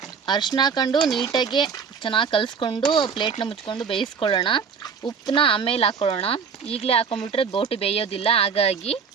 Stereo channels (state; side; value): quieter; left; 6.2 dB